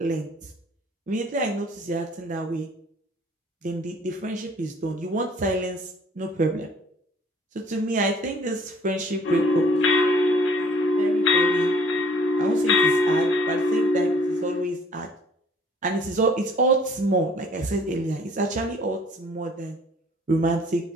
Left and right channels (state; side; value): normal; both; correlation 0.56